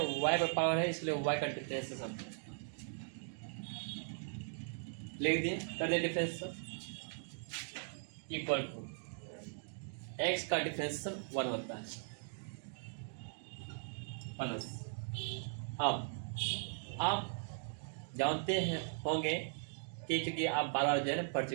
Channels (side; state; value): left; silent; digital silence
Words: पर पावर है, इसलिए y का डिफरेंशियल लिख दिए, कर दिए डिफरेंशियल इक्वल टू x का डिफरेंशियल 1 होता है प्लस। अब आप जानते हैं होंगे कि चूंकि आप बार बार जो है ना पढ़